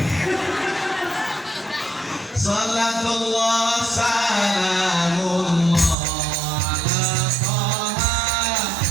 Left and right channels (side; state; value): left; drops out; at 6.0 s